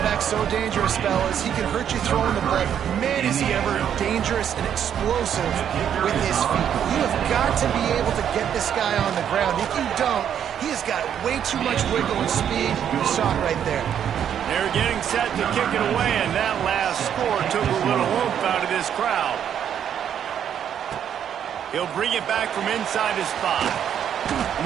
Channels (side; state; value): left; quieter; 9.1 dB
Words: so dangerous, fellas. He can hurt you throwing the ball. Man, is he ever dangerous and explosive with his feet. You have got to be able to get this guy on the ground. If you don't, he has got way too much wiggle and speed. You saw it right there. They're getting set to kick it away, and that last score took a little oomph out of this crowd. He'll bring it back from inside his 5.